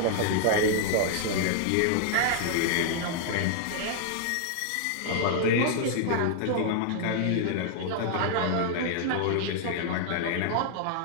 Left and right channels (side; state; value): both; different; correlation 0.00